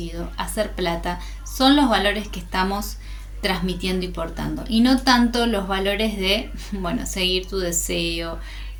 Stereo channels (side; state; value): both; identical; correlation 1.00